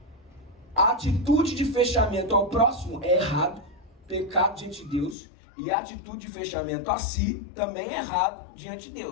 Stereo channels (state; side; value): drops out; right; at 5.2 s